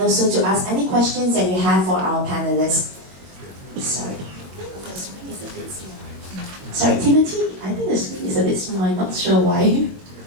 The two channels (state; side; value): late; left; 22 ms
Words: also to ask any questions that you have for our panelists. Sorry, the screen is a bit small. Sorry, Timothy, I think the screen is a bit small. I'm not sure why.